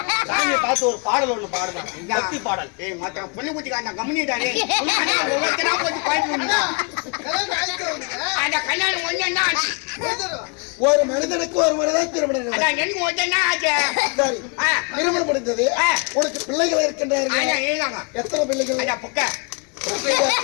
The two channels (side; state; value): right; quieter; 34.2 dB